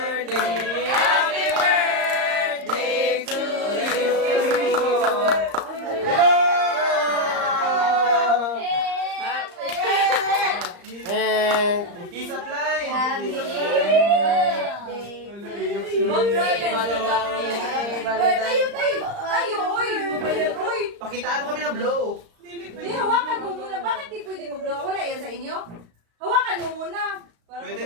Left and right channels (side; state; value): left; late; 35 ms